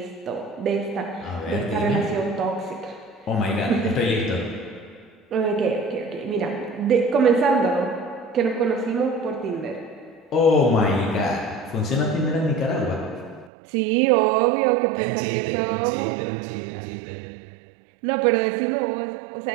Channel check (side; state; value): left; drops out; at 13.5 s